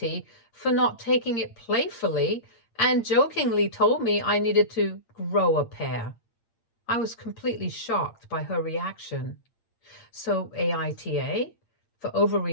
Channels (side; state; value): right; late; 8.7 ms